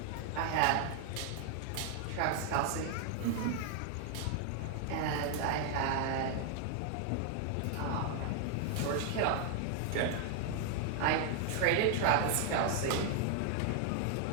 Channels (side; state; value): both; different; correlation 0.00